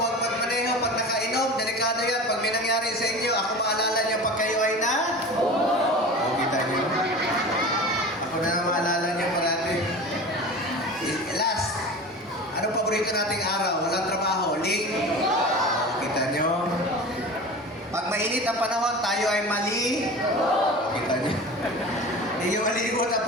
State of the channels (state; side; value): normal; both; correlation 0.34